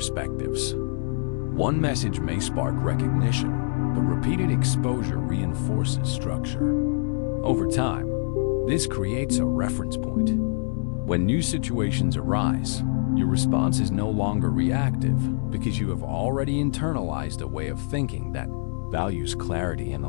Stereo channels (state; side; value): silent; right; digital silence